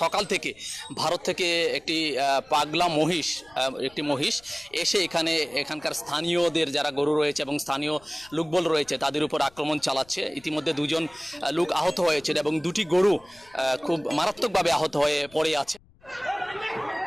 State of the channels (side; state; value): left; noise; rumble, 29 dB below the sound